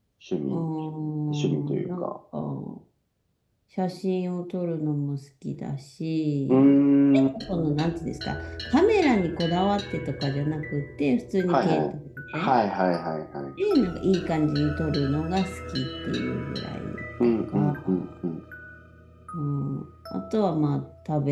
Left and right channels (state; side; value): identical; both; correlation 1.00